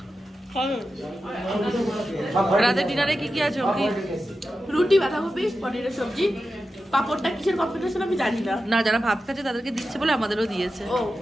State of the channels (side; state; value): both; normal; correlation 0.91